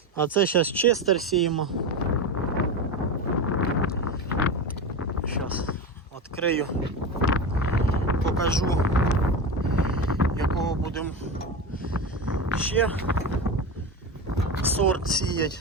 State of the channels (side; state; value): both; normal; correlation 0.22